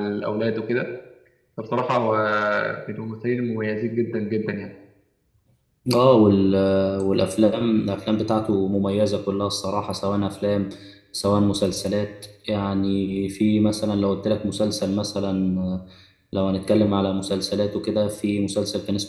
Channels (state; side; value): identical; both; correlation 1.00